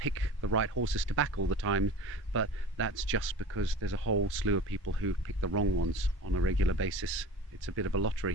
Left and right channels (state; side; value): normal; both; correlation 0.37